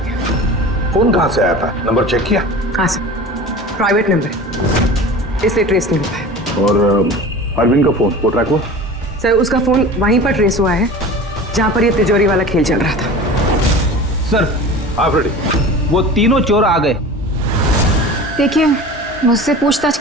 फोन कहाँ से आया था? नंबर चेक किया? हाँ सर, प्राइवेट नंबर है, इसलिए ट्रेस नहीं हो पाया। और अरविंद का फोन वो ट्रैक हुआ? सर, उसका फोन वहीं पर ट्रेस हुआ है जहां पर ये तिजोरी वाला खेल चल रहा था। सर, आप रेडी? वो तीनों चोर आ गए। देखिए, मुझसे पूछताछ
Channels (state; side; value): normal; both; correlation 0.36